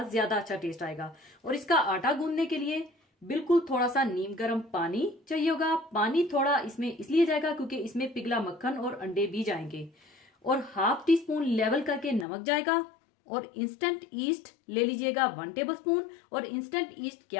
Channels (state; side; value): drops out; right; at 12.2 s